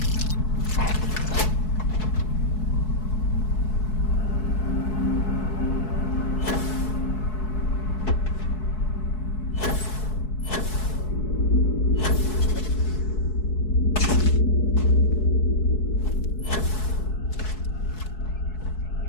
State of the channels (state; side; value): late; right; 4.7 ms